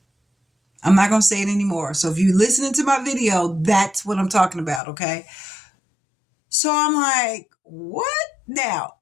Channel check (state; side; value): drops out; right; at 4.8 s